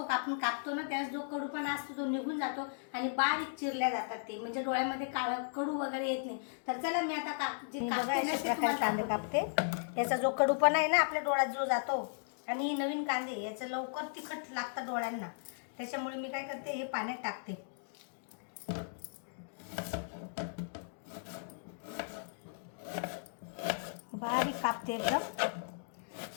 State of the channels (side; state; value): right; silent; digital silence